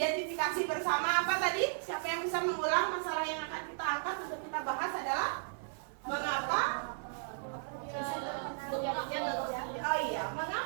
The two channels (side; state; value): left; silent; 54 dB below the other